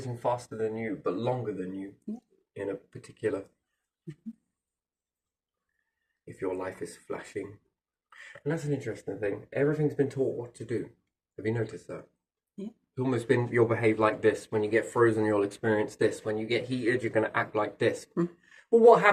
faster than you, but longer than you in a particular. If your life is flashing. And that's an interesting thing. Everything's been taught what to do. Have you noticed that? Yeah. It's almost been you'll behave like this. When you get frozen, you'll experience this. When you get heated, you're going to act like this. Mm. Well, what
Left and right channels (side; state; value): both; identical; correlation 1.00